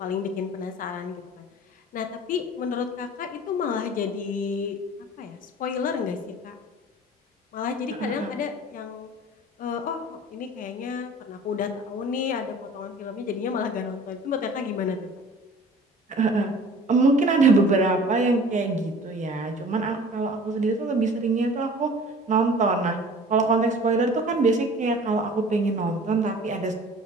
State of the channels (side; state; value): both; normal; correlation 0.45